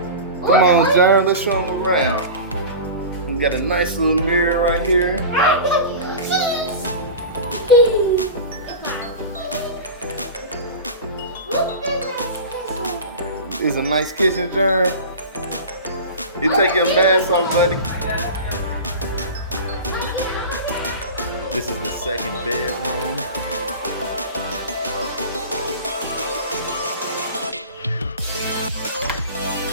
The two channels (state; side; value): inverted; both; correlation -0.32